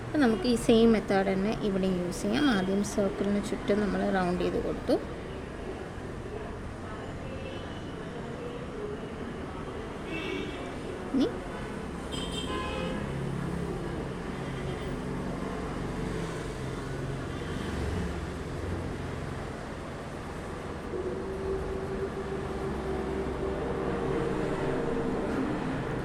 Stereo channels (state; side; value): identical; both; correlation 1.00